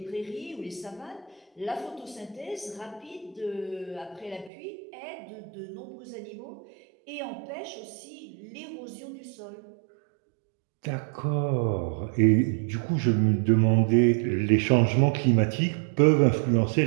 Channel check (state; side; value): drops out; left; at 4.5 s